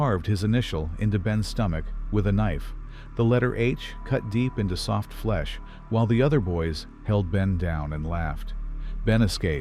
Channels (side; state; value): both; identical; correlation 1.00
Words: his initial into Ben's stomach with a knife, the letter H cut deep into soft flesh, while the other boys held Ben down and laughed. Ben